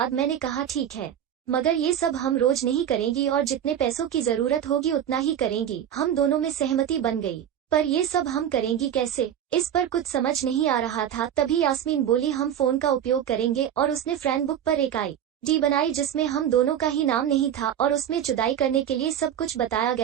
मैंने कहा, ठीक है, मगर ये सब हम रोज नहीं करेंगी और जितने पैसों की जरूरत होगी उतना ही करेंगी। हम दोनों में सहमति बन गई, पर ये सब हम करेंगी कैसे, इस पर कुछ समझ नहीं आ रहा था। तभी यास्मीन बोली, हम फोन का उपयोग करेंगे। और उसने फ्रेंड बुक पर एक ID बनाई जिसमें हम दोनों का ही नाम नहीं था और उसमें जुदाई करने के लिए सब कुछ बताया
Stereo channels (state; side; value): quieter; left; 9.9 dB